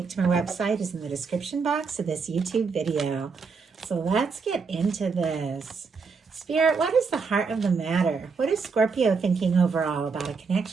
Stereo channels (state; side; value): quieter; left; 5.1 dB